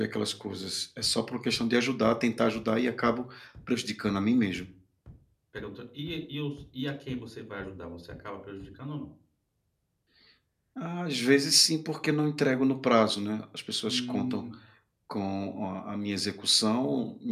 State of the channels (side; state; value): both; identical; correlation 1.00